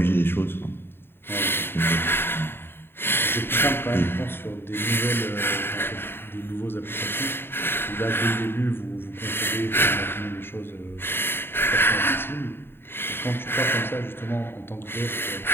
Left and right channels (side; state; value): right; late; 0.11 ms